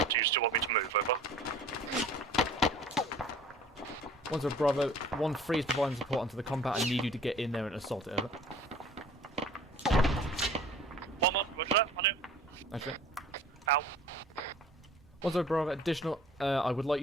Do you still want me to move, over? 1-0 Bravo. 1-3 is providing support onto the compound. I need you to get in there and assault it, over. 1-1, roger that, on it. Actually. Out. 1-0 Bravo. Additional, I would like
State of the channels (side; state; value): both; normal; correlation 0.48